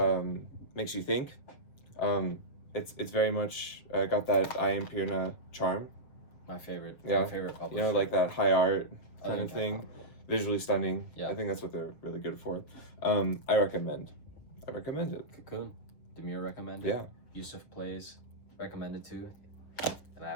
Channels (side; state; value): right; late; 7.0 ms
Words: makes you think. It's very much got that I Am Pirna charm. My favorite. Yeah. My favorite publisher. You know, like that high art kind of thing. Visually stunning. Yeah. I think that's what they're really good for. I recommend it. Cocoon. Demir recommended. Yeah. YusofPlays recommended too. And